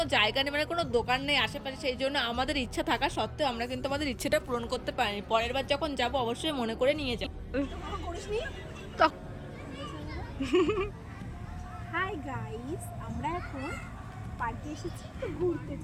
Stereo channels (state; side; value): identical; both; correlation 1.00